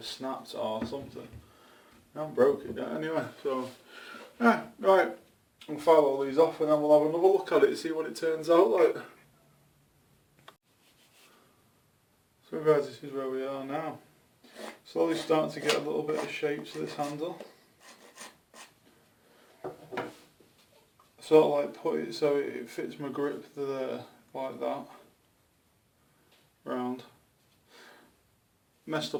snapped or something. I haven't broke it yet anyway, so yeah, right. I'll file all these off and then we'll have another look at it and see what it turns out like. So guys, this is where we are now. Slowly starting to get a little bit of shape to this handle. Sort of like put it so it fits my grip there, like that. Round. Messed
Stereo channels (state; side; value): identical; both; correlation 1.00